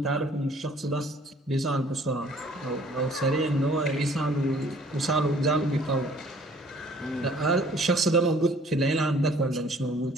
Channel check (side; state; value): both; normal; correlation 0.56